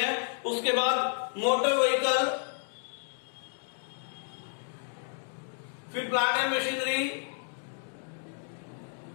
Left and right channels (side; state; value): right; silent; 57 dB below the other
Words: उसके बाद मोटर व्हीकल, फिर plant and machinery,